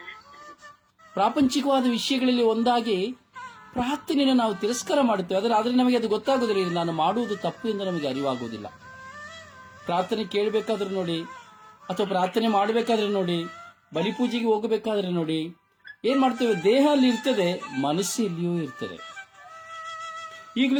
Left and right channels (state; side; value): identical; both; correlation 1.00